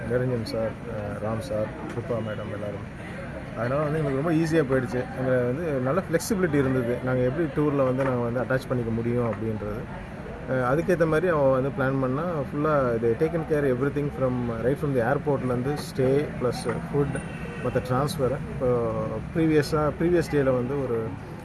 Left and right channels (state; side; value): identical; both; correlation 1.00